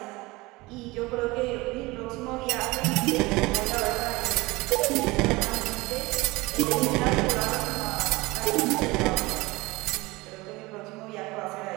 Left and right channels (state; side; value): quieter; left; 22.1 dB